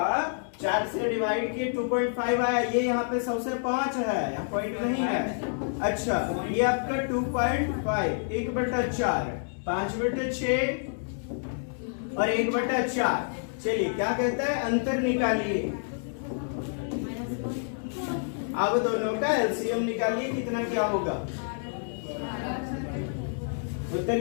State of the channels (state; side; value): silent; right; digital silence